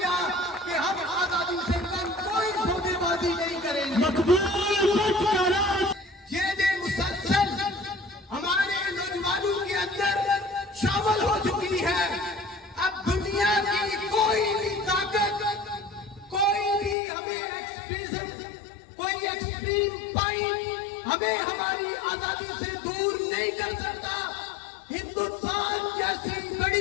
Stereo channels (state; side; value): drops out; right; at 16.9 s